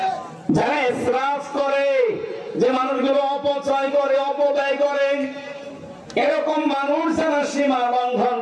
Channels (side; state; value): both; identical; correlation 1.00